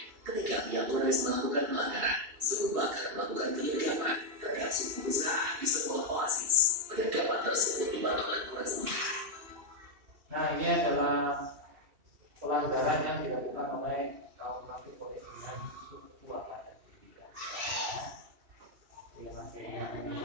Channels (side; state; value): left; late; 2.7 ms